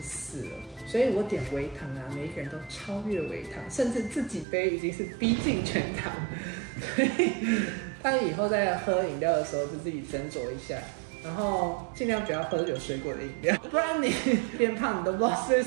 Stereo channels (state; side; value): drops out; left; at 4.5 s